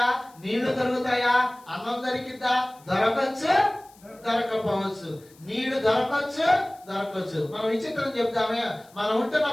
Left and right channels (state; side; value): noise; left; hiss, 27 dB below the sound